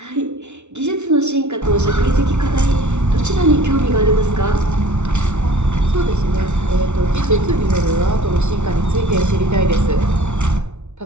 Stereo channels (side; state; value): left; late; 0.82 ms